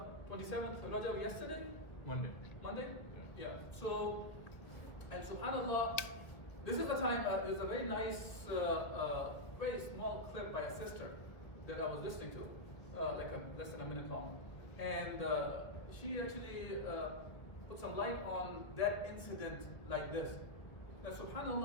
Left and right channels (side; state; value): right; late; 1.6 ms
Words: 27th of Rajab yesterday? Monday? Yeah. So, and subhanAllah, this is the time, there's a very nice, very small clip by a sister that I was listening to. less than a minute long. And she actually put some light on that incident like this. Now,